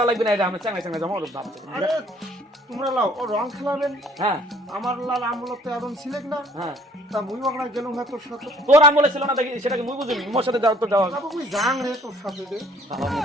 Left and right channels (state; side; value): normal; both; correlation 0.58